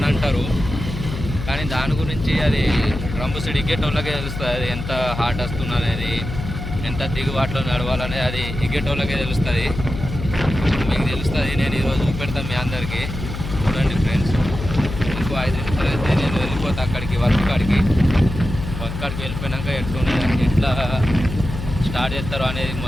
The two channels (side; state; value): left; noise; hum, 7 dB below the sound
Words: అంటారు, కానీ దాని గురించి అది డ్రమ్ము సీడ్ ఎగ్గేటోళ్ళకే తెలుస్తుంది. అది ఎంత హార్ట్ వస్తుంది అనేది, ఎంత దిగుబాటులో నడవాలనేది అది ఎగ్గేటోళ్ళకే తెలుస్తుంది. మీకు తెలుస్తుంది. నేను ఈరోజు చూపెడతాను మీ అందరికీ. చూడండి ఫ్రెండ్స్, ఇంకో 5 నిమిషాలు అయితే నేను వెళ్ళిపోతా అక్కడికి, వర్క్ కాడికి వెళ్ళిపోయినాక ఎట్లా స్టార్ట్ చేస్తారో అనేది